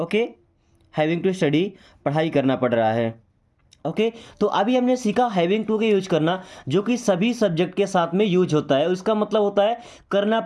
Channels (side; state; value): both; identical; correlation 1.00